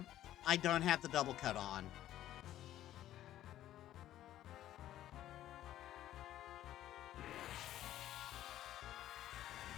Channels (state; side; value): quieter; right; 12.9 dB